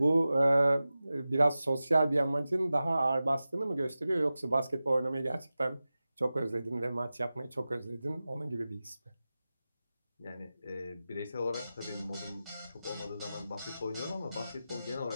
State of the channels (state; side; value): inverted; both; correlation -0.95